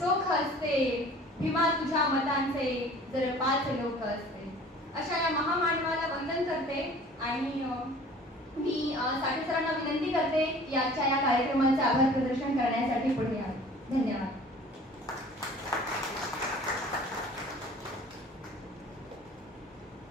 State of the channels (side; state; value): both; normal; correlation 0.47